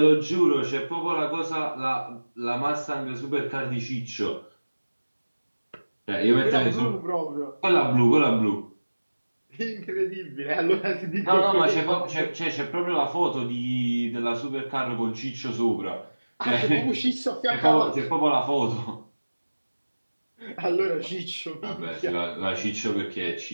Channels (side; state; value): both; inverted; correlation -1.00